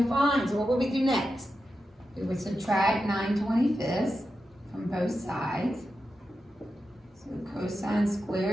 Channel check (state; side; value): normal; both; correlation 0.89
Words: to find. So what would we do next? We would subtract 9/25 from both sides. So cosine